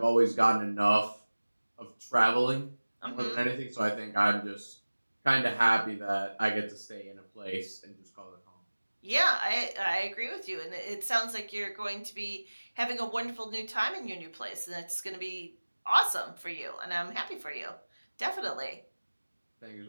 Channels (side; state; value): both; inverted; correlation -1.00